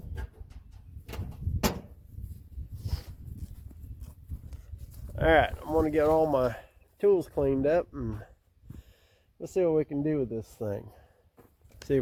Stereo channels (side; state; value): both; identical; correlation 1.00